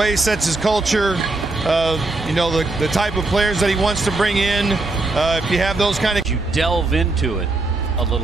he sets his culture, you know, the type of players that he wants to bring in. If you have those kind of... You delve into it a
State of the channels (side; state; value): left; quieter; 3.2 dB